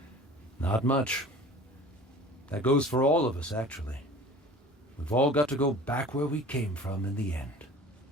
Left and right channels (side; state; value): both; normal; correlation 0.43